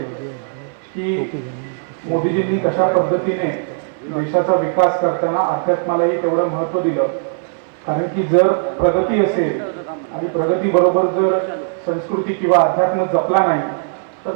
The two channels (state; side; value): silent; left; 61 dB below the other